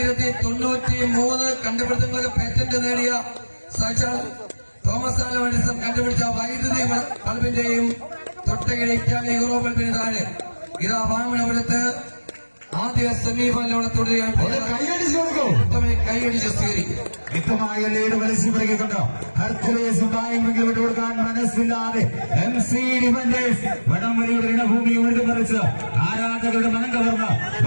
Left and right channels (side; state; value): both; inverted; correlation -1.00